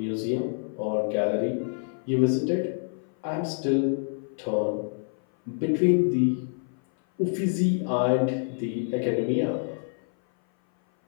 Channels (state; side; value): silent; right; 58 dB below the other